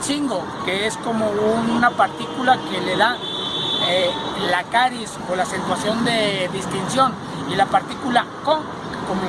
Chingo, que es como una partícula que le da la caris o la acentuación de distinción. Y la partícula con, como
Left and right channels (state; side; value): identical; both; correlation 1.00